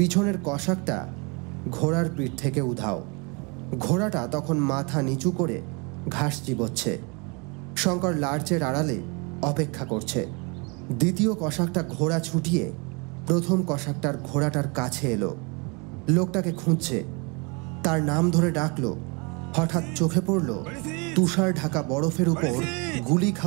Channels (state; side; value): quieter; left; 30.9 dB